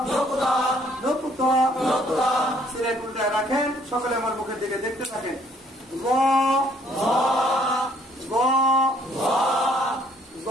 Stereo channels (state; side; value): normal; both; correlation 0.63